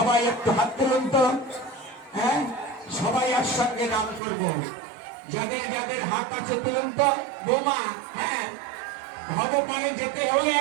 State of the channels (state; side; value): drops out; left; at 4.2 s